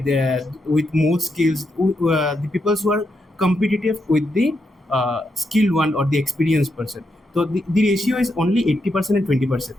with more skills, the people who are competitive with the skilled one or the experienced person. So the ratio is only 80% and 20%.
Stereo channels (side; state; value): both; normal; correlation 0.82